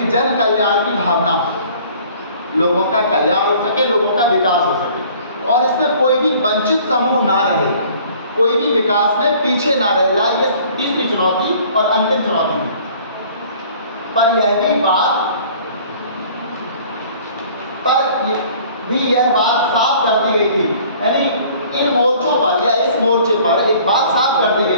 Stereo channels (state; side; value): inverted; both; correlation -0.52